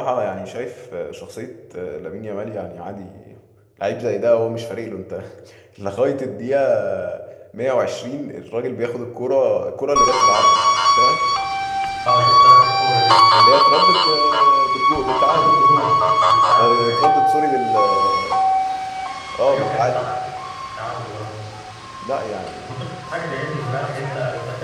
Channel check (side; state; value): both; identical; correlation 1.00